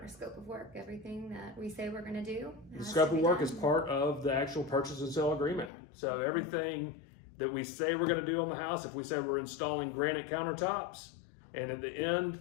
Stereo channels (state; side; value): drops out; right; at 5.7 s